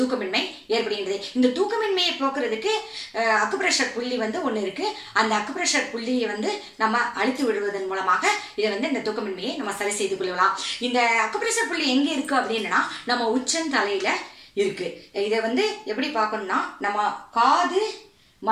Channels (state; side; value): identical; both; correlation 1.00